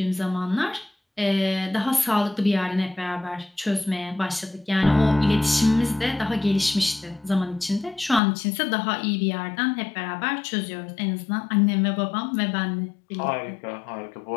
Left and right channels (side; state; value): right; drops out; at 8.2 s